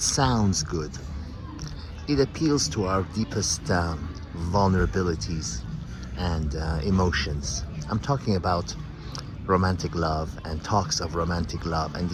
sounds good. It appeals to our deepest vulnerabilities and emotions. I'm talking about romantic love and talks of romantic love and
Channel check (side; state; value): both; identical; correlation 1.00